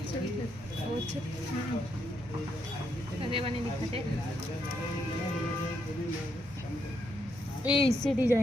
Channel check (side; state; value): both; normal; correlation 0.78